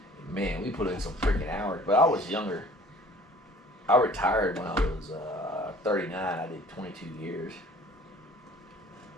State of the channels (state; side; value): normal; both; correlation 0.51